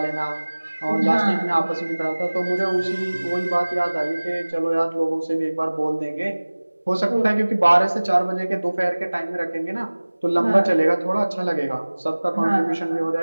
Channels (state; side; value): inverted; both; correlation -1.00